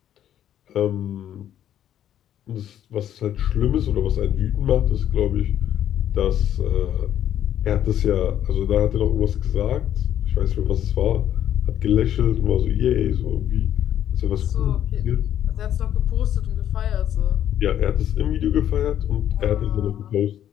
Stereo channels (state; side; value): quieter; right; 10.8 dB